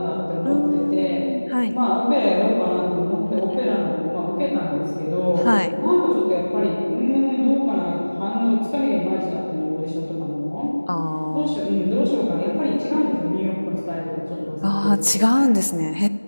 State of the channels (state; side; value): inverted; both; correlation -1.00